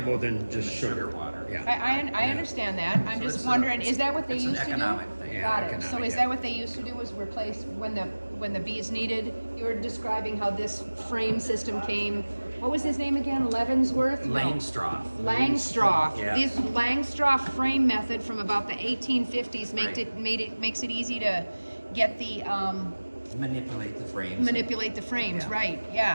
than just Than sugar. water. Yeah. I understand that. I'm So just it's wondering, a- is that what they it's an used to do? economic thing. Yeah, Got it. So economic, is yeah. that what they used to do, was replace when the bees needed? You were describing how this frame system came. What was his name again? Leavenworth? No. Langstroth. Langstroth. Yeah. This Langstroth frame method from about the 1850s Right. makes it easy to get the Manipulate the frames. manipulate the frames, Yeah. right?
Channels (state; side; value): inverted; both; correlation -1.00